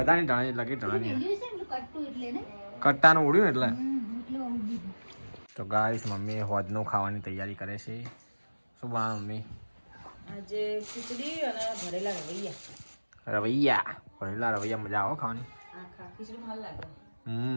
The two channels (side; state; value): both; inverted; correlation -1.00